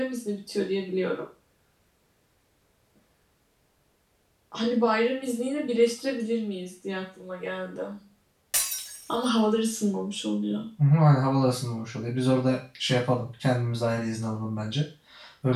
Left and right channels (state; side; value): identical; both; correlation 1.00